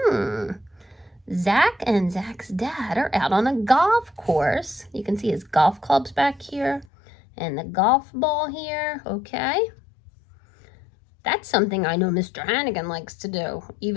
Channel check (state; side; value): drops out; right; at 6.9 s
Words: Zach and Zach's dad are out on a golf course. You can see his golf clubs back here and the golf ball here, okay? That's something I know Mr. Hannigan likes to do.